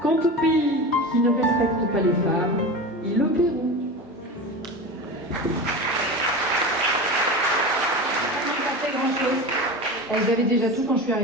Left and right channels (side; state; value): both; normal; correlation 0.28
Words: Quant aux pays qui ne respectent pas les femmes, ils le paieront. Elles avaient déjà tout quand je suis